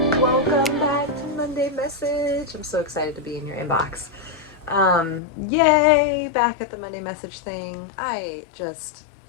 Welcome back to Monday Message. I'm so excited to be in your inbox. Yay, back at the Monday Message thing. I just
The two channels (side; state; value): right; drops out; at 5.2 s